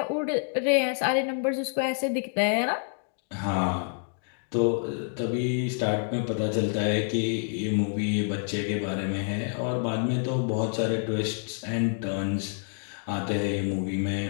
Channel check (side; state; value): right; silent; 59 dB below the other